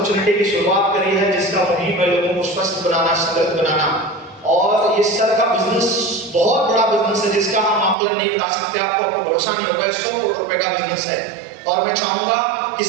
की शुरुआत करी है, जिसका मुहिम है लोगों को स्वस्थ बनाना, समृद्ध बनाना। और ये सर का बिजनेस बहुत बड़ा बिजनेस है, जिसका हम आकलन नहीं बता सकते, आपको भरोसा नहीं होगा, 100 करोड़ रुपए का बिजनेस है। और मैं चाहूंगा कि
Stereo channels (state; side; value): drops out; left; at 8.0 s